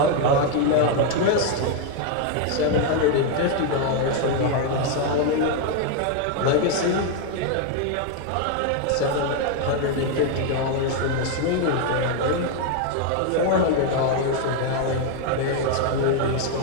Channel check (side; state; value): both; different; correlation 0.01